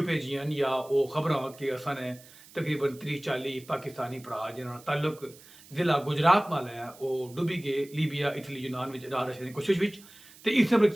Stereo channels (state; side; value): noise; right; hiss, 22 dB below the sound